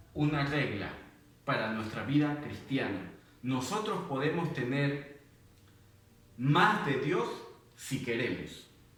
una regla para nuestra vida cristiana. Nosotros podemos tener más de Dios si queremos.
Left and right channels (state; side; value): identical; both; correlation 1.00